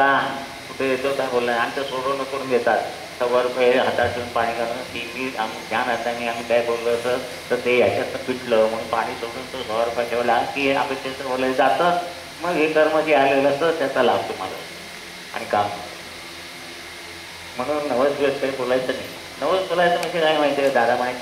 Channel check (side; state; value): both; identical; correlation 1.00